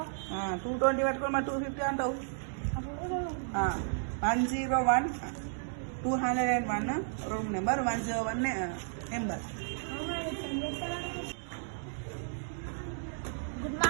220 పెట్టుకుని మరి 250 అంటావు. 101 201 room number 101 number. Good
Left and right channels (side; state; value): left; silent; digital silence